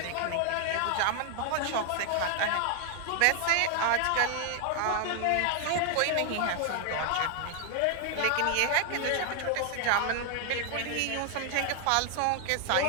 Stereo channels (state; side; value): different; both; correlation 0.00